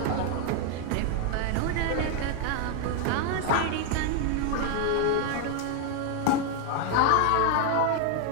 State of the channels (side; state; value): both; different; correlation 0.00